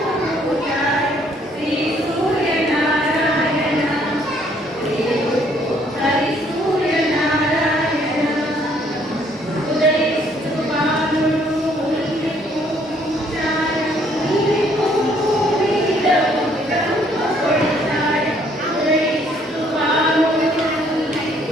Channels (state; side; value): normal; both; correlation 0.65